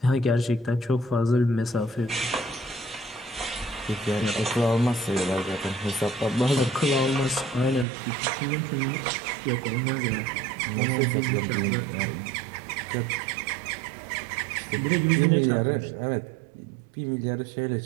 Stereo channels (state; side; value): drops out; left; at 7.9 s